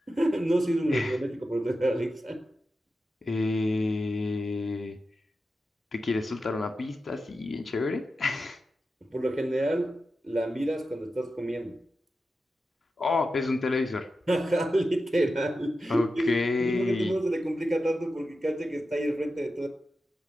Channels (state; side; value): normal; both; correlation 0.91